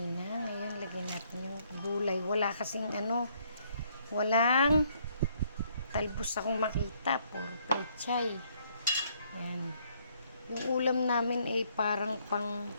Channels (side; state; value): both; inverted; correlation -0.68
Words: Ngayon, lagyan natin yung gulay. Wala kasing walang talbos akong makita. Puro pechay. Yan. Yung ulam namin ay parang pang